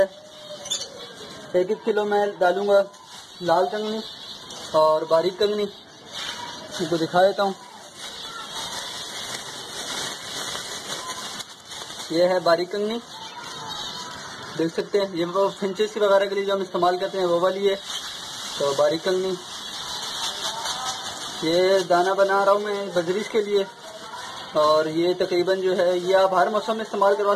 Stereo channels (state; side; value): identical; both; correlation 1.00